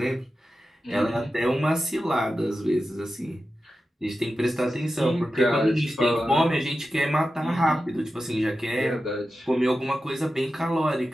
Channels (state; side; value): normal; both; correlation 0.92